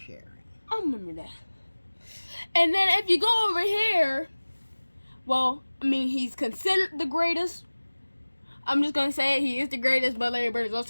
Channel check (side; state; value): both; inverted; correlation -1.00